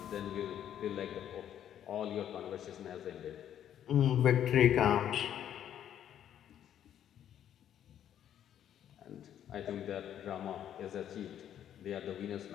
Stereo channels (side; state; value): right; quieter; 10.3 dB